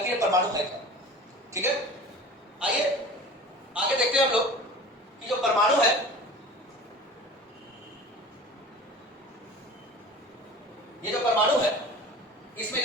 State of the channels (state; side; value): normal; both; correlation 0.38